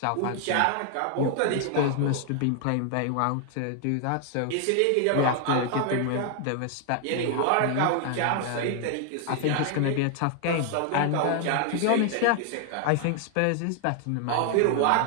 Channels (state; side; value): different; both; correlation 0.00